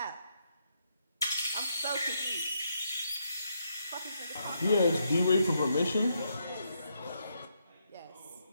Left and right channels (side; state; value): both; inverted; correlation -0.78